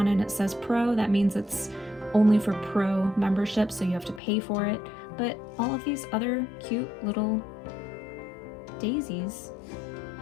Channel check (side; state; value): right; drops out; at 4.2 s